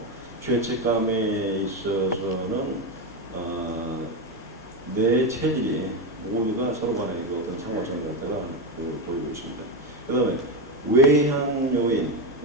죄책감에 있어서는 내 체질이 모두가 서로 간에 어떤 상관성을 갖다가 보이고 있습니다. 그 다음에 외향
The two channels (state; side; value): normal; both; correlation 0.12